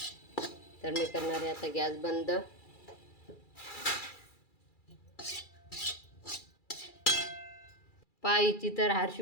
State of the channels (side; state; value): right; late; 2.3 ms